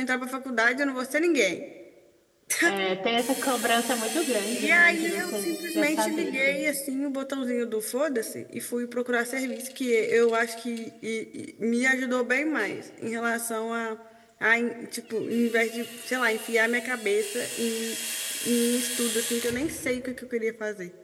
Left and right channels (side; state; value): both; identical; correlation 1.00